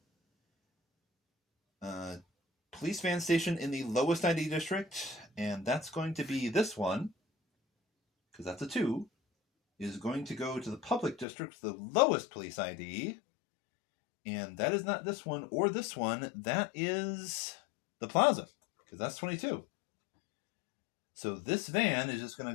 police van station in the lowest ID district, and that's going to be this one, because that's a 2, is going to go to the public district with the lowest police ID. And that is not this one or this one. That is the plaza, because that's 22. So this van is just going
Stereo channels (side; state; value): right; drops out; at 11.2 s